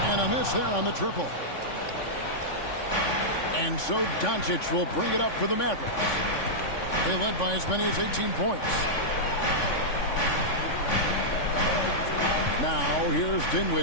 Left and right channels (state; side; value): late; right; 3.5 ms